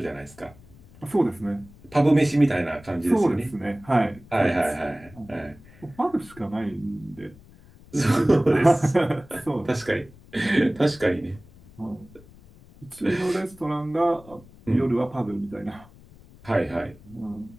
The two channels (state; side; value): noise; left; rumble, 23 dB below the sound